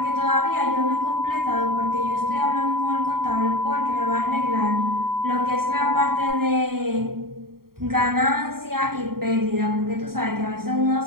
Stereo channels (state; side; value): late; left; 0.93 ms